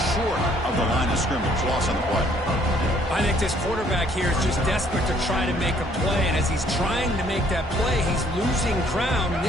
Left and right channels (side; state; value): both; normal; correlation 0.63